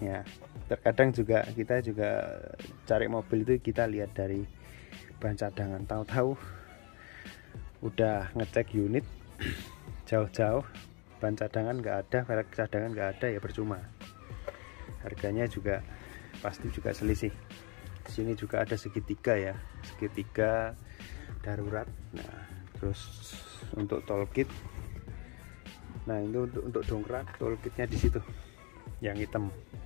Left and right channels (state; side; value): quieter; right; 31.7 dB